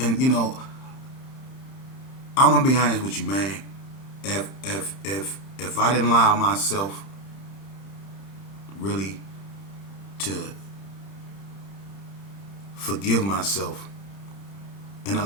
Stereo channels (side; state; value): right; late; 30 ms